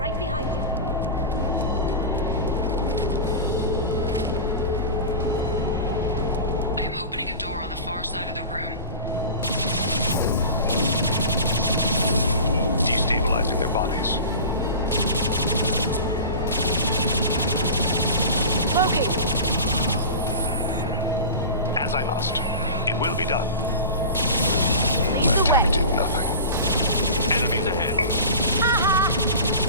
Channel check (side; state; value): both; inverted; correlation -0.32